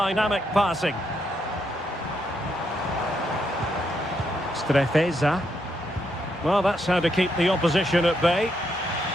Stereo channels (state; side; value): normal; both; correlation 0.78